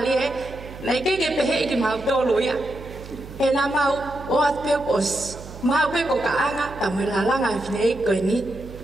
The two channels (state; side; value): noise; right; hum, 14 dB below the sound